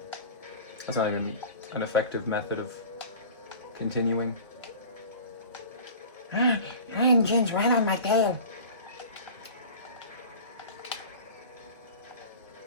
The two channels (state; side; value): inverted; both; correlation -0.39